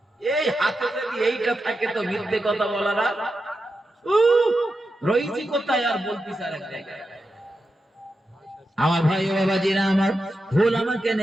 এই হাতে যদি এইটা থাকে তো মিথ্যে কথা বলার আর রইছি কোথায়, আর বলতিস আর এক জায়গায়। আমার ভাই ও বাবাজিরা আমার, ভুল আমাকে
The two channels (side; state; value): both; normal; correlation 0.89